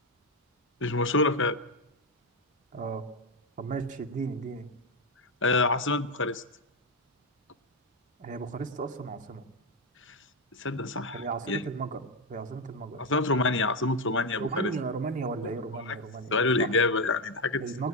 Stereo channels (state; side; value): normal; both; correlation 0.07